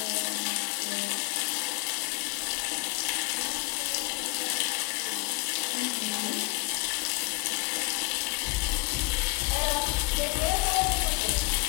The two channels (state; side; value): quieter; right; 26.2 dB